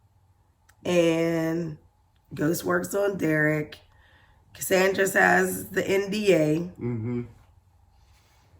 and Ghost works on Derek. Cassandra has the NDA. Mm-hmm.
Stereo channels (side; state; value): both; identical; correlation 1.00